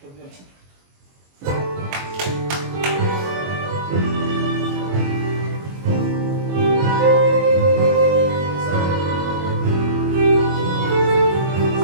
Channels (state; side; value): late; left; 22 ms